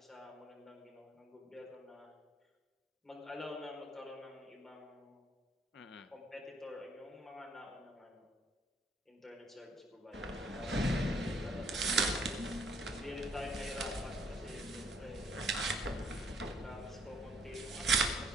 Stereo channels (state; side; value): normal; both; correlation 0.65